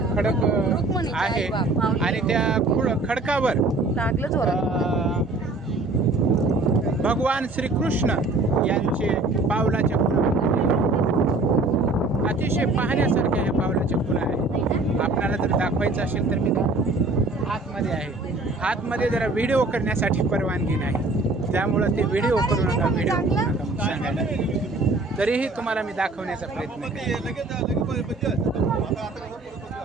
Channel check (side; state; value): left; quieter; 3.1 dB